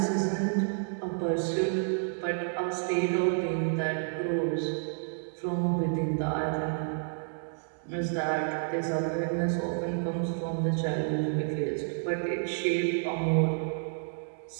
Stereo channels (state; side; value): silent; left; digital silence